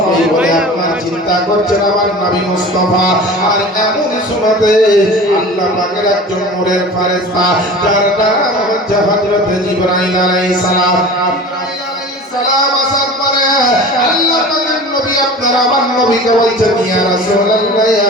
এই বলে আপনার চিন্তা করছেন আমার নবী মুস্তাফা। আর এমন সময়তে আল্লাহ পাকের একজন নূরের ফেরেশতা যার নাম হচ্ছে হযরত জিবরাইল আলাইহিস সালাম আসার পরে আল্লাহ পাকের নবী আপনার আমার নবীকে বলছেন ইয়া রাসূলুল্লাহ ইয়া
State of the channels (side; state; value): both; normal; correlation 0.38